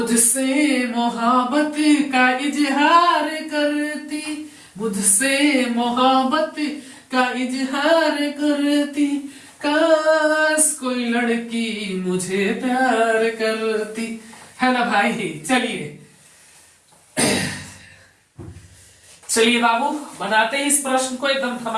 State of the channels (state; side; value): identical; both; correlation 1.00